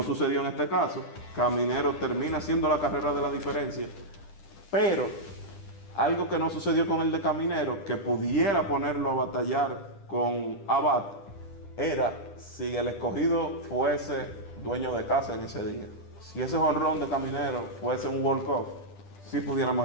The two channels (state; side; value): late; right; 10 ms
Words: sucedió en este caso. Caminero termina haciendo la carrera de la diferencia, pero algo que no sucedió con el de Caminero, que pudiera ponerlo a batallar con Abad, era si el escogido fuese dueño de casa en ese día. Si ese jonrón de Caminero fuese un walk-off, sí